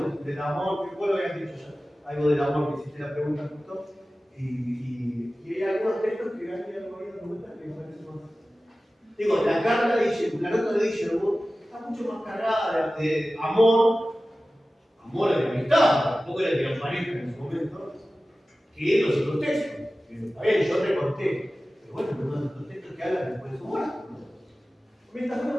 del amor, que vos lo habías dicho ya. Algo del amor que hiciste la pregunta justo. Y hay algunos textos que han ido comentar que me parecen más. Digo, la carta de la nota de Guillermo está mucho más cargada de amor de amistad, tampoco era de los parejas en ese momento, que los otros textos. Está bien, yo recorté, pero bueno, no los otros textos que hablan después de su muerte. Esta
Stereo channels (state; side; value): normal; both; correlation 0.96